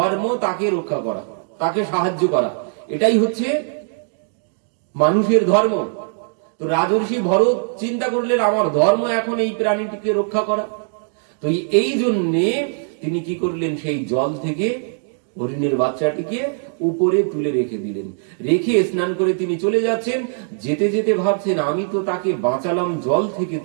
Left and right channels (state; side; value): silent; left; digital silence